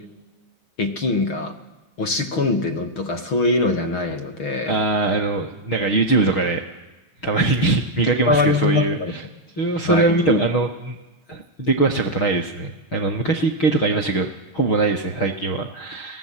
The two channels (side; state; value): right; late; 6.4 ms